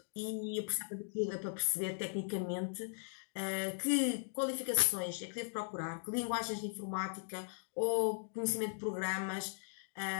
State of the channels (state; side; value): silent; right; digital silence